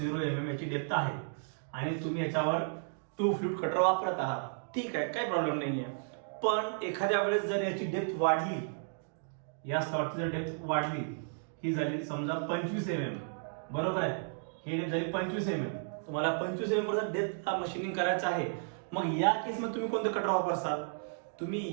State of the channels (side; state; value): left; silent; digital silence